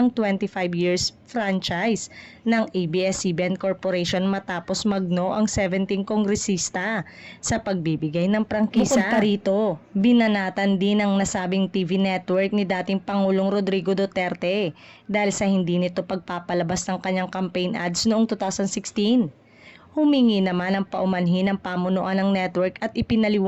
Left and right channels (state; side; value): identical; both; correlation 1.00